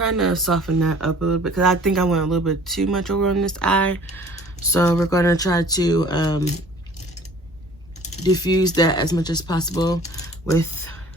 to soften that up a little bit, because I think I went a little bit too much over on this eye. So we're going to try to diffuse that as much as possible with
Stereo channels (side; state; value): right; noise; rumble, 26 dB below the sound